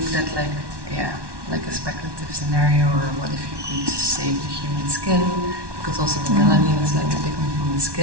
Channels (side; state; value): left; late; 1.1 ms